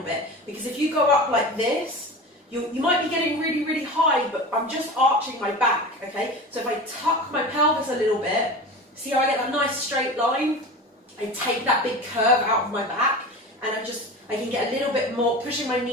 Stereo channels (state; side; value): normal; both; correlation 0.32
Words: bit, because if you go up like this, you might be getting really, really high, but I'm just arching my back, okay? So if I tuck my pelvis a little bit, see how I get that nice straight line? I take that big curve out of my back, and I can get a little bit more, pushing my